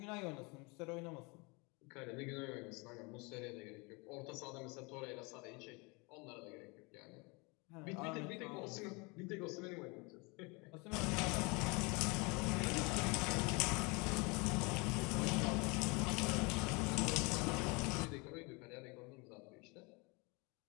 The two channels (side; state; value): right; quieter; 28.5 dB